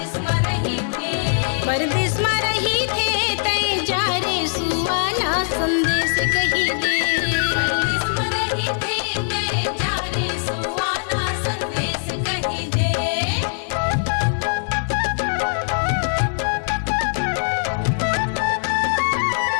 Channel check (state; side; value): silent; right; digital silence